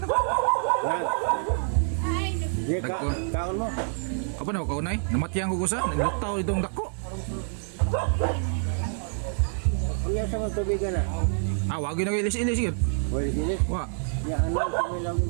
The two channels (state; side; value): silent; left; 58 dB below the other